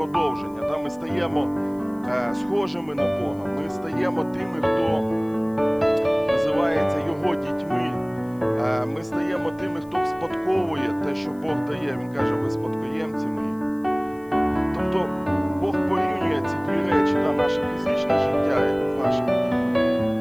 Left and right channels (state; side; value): noise; left; hiss, 29 dB below the sound